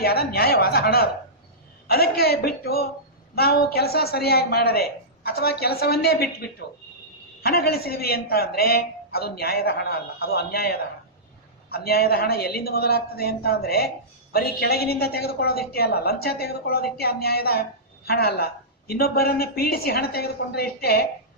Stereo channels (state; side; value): normal; both; correlation -0.16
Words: ನ್ಯಾಯವಾದ ಹಣ. ಅದು ಅದಕ್ಕೆ ಬಿಟ್ಟು ನಾವು ಕೆಲಸ ಸರಿಯಾಗಿ ಮಾಡದೆ ಅಥವಾ ಕೆಲಸವನ್ನೇ ಬಿಟ್ಟು ಹಣ ಗಳಿಸಿದ್ವಿ ಅಂತ ಅಂದ್ರೆ ಅದು ನ್ಯಾಯದ ಹಣ ಅಲ್ಲ, ಅದು ಅನ್ಯಾಯದ ಹಣ. ಅನ್ಯಾಯದ ಹಣ ಎಲ್ಲಿಂದ ಮೊದಲಾಗ್ತದೆ ಅಂತ ಅಂದ್ರೆ ಬರೀ ಕೆಳಗಿನಿಂದ ತೆಗೆದುಕೊಳ್ಳೋದಿಷ್ಟೇ ಅಲ್ಲ, ಲಂಚ ತೆಗೆದುಕೊಳ್ಳೋದಿಷ್ಟೇ ಅನ್ಯಾಯದ ಹಣ ಅಲ್ಲ. ಇನ್ನೊಬ್ಬರನ್ನ ಪೀಡಿಸಿ ಹಣ ತೆಗೆದುಕೊಂಡ್ರೆ ಇಷ್ಟೇ